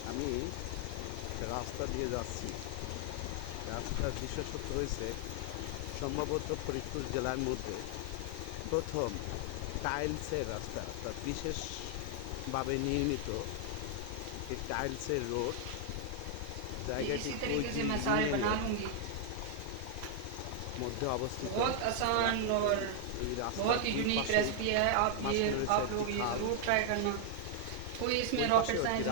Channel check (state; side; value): different; both; correlation 0.00